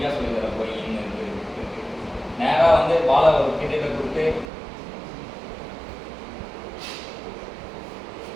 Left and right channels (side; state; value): left; drops out; at 4.5 s